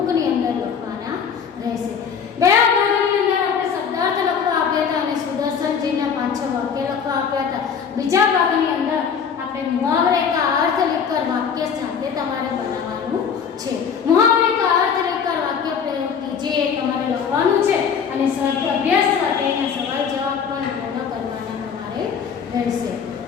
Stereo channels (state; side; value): quieter; right; 6.8 dB